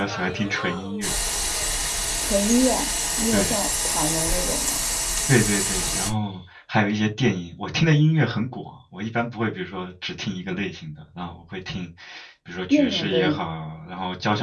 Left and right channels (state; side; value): identical; both; correlation 1.00